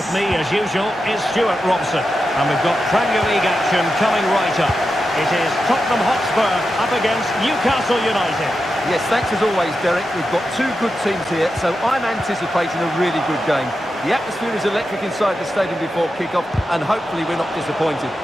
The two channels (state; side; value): normal; both; correlation 0.89